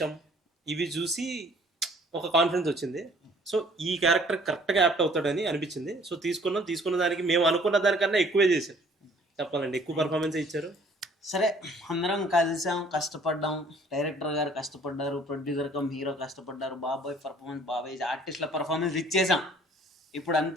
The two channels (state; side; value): normal; both; correlation 0.56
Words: ఇవి చూసి ఒక కాన్ఫిడెన్స్ వచ్చింది. సో ఈ క్యారెక్టర్ కరెక్ట్గా యాప్ట్ అవుతాడని అనిపించింది. సో తీసుకున్న దానికి మేము అనుకున్న దానికన్నా ఎక్కువే చేశారు. చెప్పాలండి, ఎక్కువ పర్ఫార్మెన్స్ ఇచ్చారు. సరే, అందరం కలిసాం, కష్టపడ్డాం. డైరెక్టర్ గారు కష్టపడ్డారు, ప్రొడ్యూసర్ కమ్ హీరో కష్టపడ్డారు, బాబాయ్ పర్ఫార్మెన్స్, బాబాయ్ ఆర్టిస్ట్ల పర్ఫార్మెన్స్ ఇచ్చేసాం. ఇప్పుడు